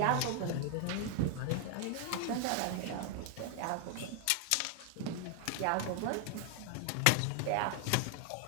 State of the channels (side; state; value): both; different; correlation 0.00